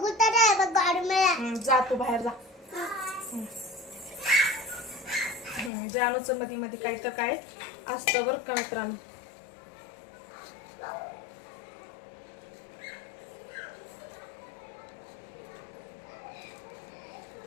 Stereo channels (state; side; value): drops out; right; at 5.7 s